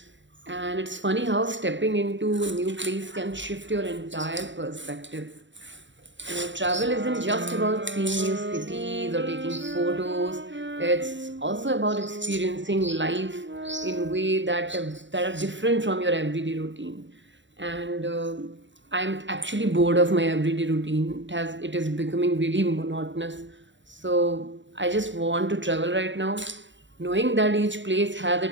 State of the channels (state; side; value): late; left; 0.54 ms